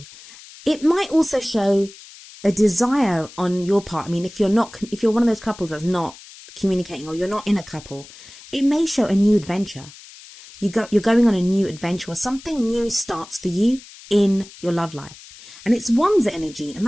It might also show a desire on your part. I mean, if you're one of those couples that's not communicating, or you're not in a couple, it may show a new adventure. You're going on a new adventure, or something new starts for you in your love life. And it's Wands energy, and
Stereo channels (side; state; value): left; noise; hiss, 19 dB below the sound